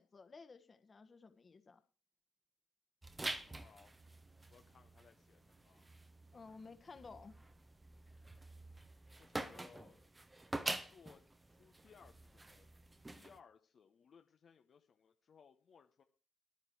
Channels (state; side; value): normal; both; correlation 0.96